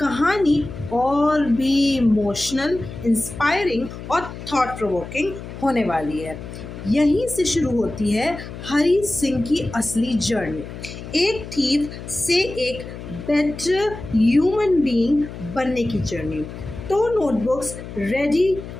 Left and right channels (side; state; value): left; noise; hum, 11 dB below the sound